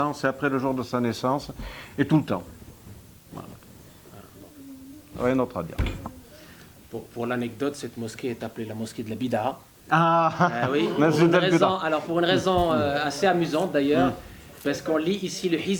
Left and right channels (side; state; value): both; identical; correlation 1.00